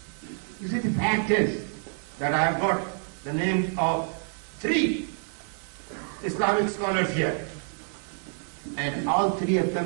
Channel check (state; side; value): silent; left; 60 dB below the other